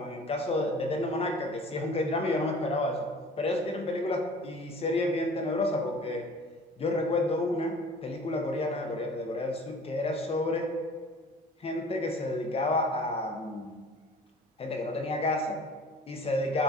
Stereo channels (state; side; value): normal; both; correlation 0.47